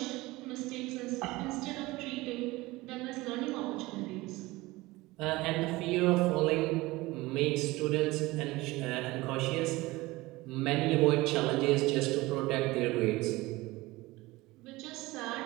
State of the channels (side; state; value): left; quieter; 20.4 dB